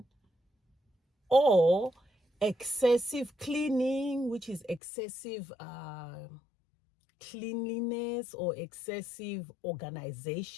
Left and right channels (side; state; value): right; drops out; at 4.8 s